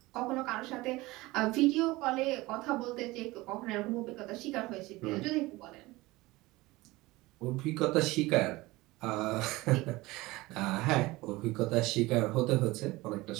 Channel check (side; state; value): left; quieter; 20.4 dB